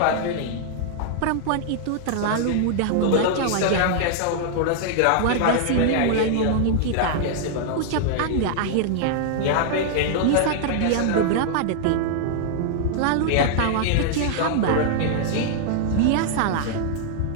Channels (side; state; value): both; different; correlation -0.01